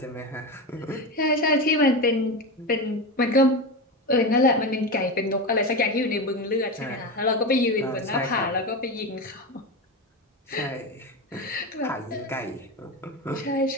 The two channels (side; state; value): both; normal; correlation 0.20